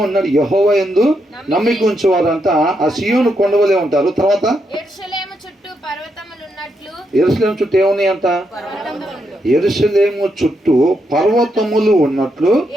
యెహోవా యందు నమ్మిక ఉంచేవారంట ఆ సీయోను కొండవలే ఉంటారు. తర్వాత యెరూషలేము చుట్టూ ఏమున్నాయంట? యెరూషలేము చుట్టూ పర్వతములు ఉన్నట్లు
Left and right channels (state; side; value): normal; both; correlation 0.80